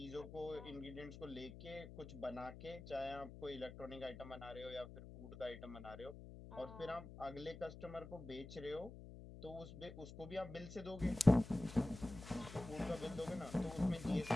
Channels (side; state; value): left; noise; hum, 13 dB below the sound